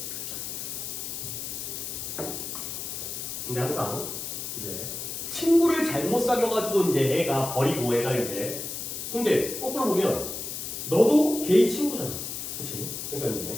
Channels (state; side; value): noise; left; hiss, 6 dB below the sound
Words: 근데 항상 이제 친구를 잘못 사귀어가지고 이제 애가 버리고 애가 이제 근데 거꾸로 보면 너도 걔의 친구잖아. 그치? 그러니까 이제